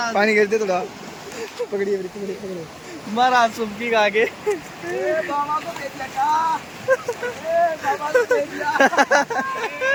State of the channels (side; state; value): both; identical; correlation 1.00